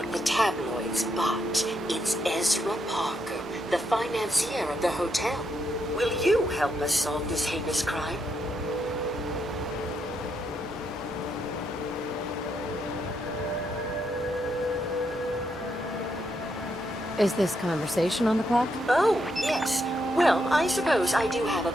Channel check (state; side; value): normal; both; correlation 0.79